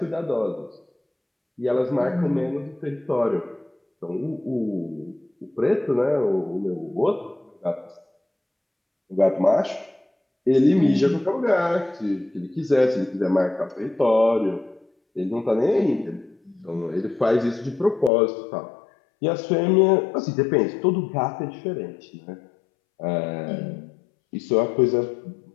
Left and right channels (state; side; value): drops out; right; at 18.1 s